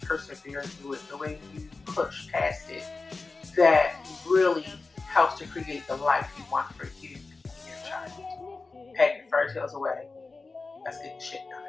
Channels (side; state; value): right; quieter; 3.9 dB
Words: persevere through it, the way you push past it, that really helps to create the life you want for you and your child. Pack your fairy tales away. Let's get the shit